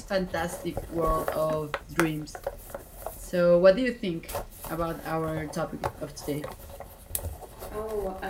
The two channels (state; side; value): identical; both; correlation 1.00